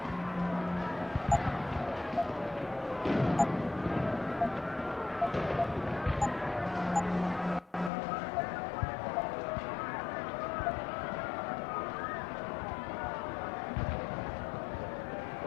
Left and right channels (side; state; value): right; drops out; at 7.9 s